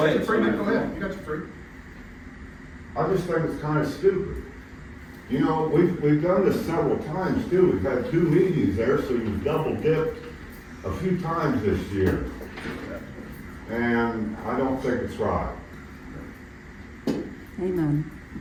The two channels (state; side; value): identical; both; correlation 1.00